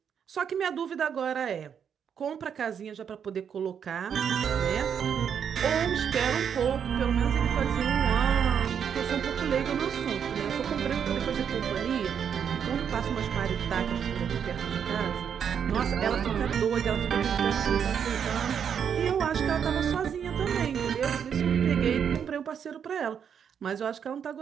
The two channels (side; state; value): left; quieter; 7.8 dB